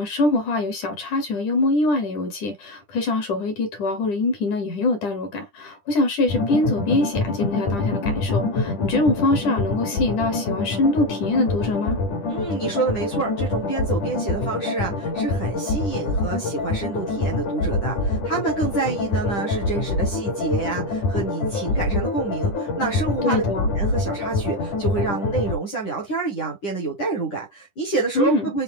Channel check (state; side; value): late; right; 10 ms